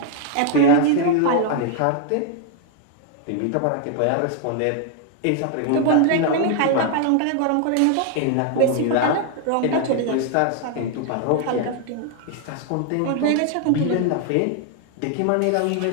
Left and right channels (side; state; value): both; different; correlation 0.00